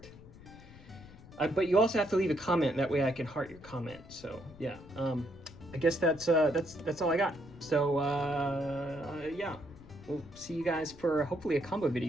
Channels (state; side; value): noise; left; rumble, 19 dB below the sound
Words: But you also have to leave a comment. That way I can heart your comment. So yeah, I guess that's all I got. So yeah, we'll see you guys for hopefully a combo